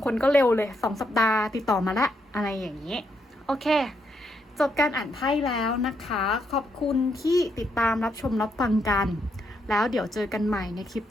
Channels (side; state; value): both; normal; correlation 0.78